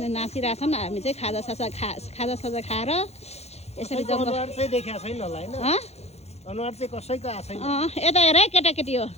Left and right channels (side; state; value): right; late; 0.31 ms